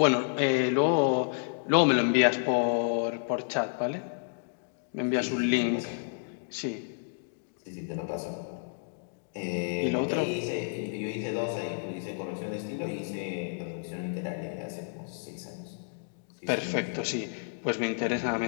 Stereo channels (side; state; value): right; silent; digital silence